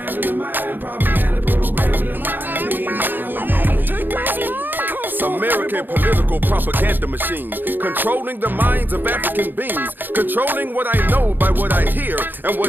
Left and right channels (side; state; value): left; late; 0.091 ms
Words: your mind, propaganda programming your mind, be blind with me. American political propaganda machine, controlling the minds of African beings, controlling what I know by what I hear and